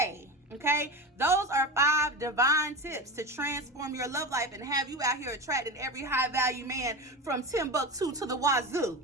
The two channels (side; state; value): both; normal; correlation 0.24